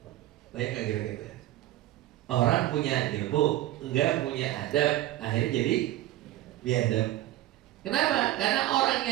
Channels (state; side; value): quieter; left; 14.8 dB